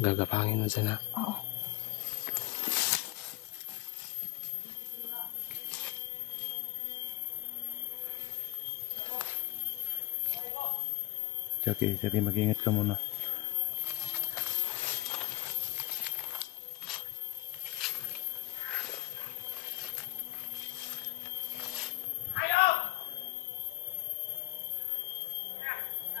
mo dyan ha. Oo. Jackie, mag-ingat ka muna.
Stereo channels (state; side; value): quieter; right; 19.6 dB